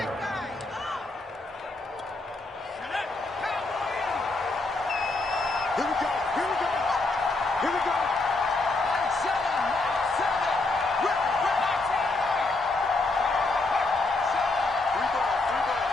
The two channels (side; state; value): right; quieter; 3.2 dB